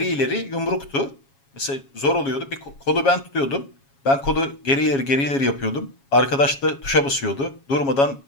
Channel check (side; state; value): right; late; 7.3 ms